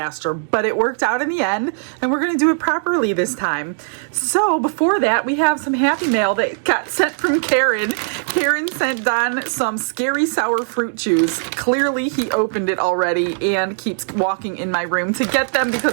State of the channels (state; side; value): silent; left; digital silence